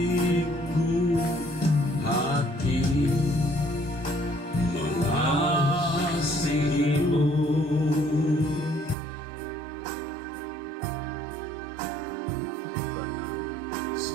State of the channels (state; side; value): drops out; left; at 9.0 s